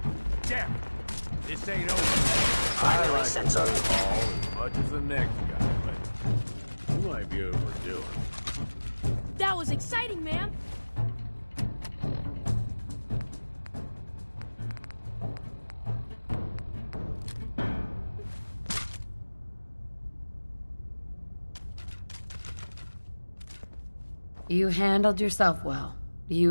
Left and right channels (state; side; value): inverted; both; correlation -1.00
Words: Damn! This ain't over. I like sensor. the ball as much as the next guy, but you might be overdoing. That was exciting, ma'am. You handled yourself well.